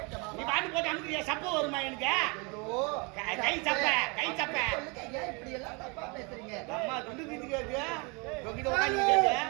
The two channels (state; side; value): quieter; left; 30.6 dB